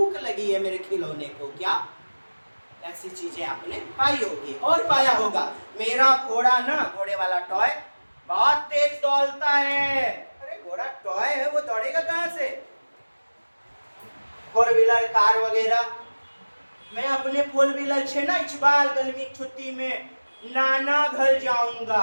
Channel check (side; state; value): both; inverted; correlation -1.00